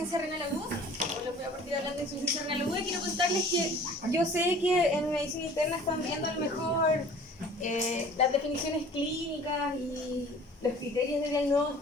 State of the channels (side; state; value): both; normal; correlation 0.48